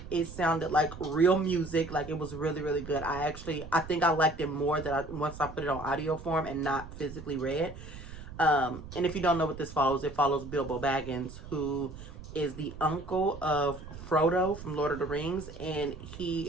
It sounded like real music. Like, it was really, really good. I think I liked it more once I put it on audio form and not physically read. And if you don't know what this follows, it follows Bilbo Baggins, who is the uncle of Frodo from Lord of the Rings, and he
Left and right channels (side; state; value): right; noise; rumble, 13 dB below the sound